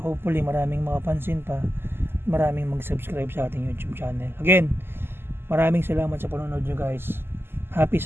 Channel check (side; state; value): left; late; 0.11 ms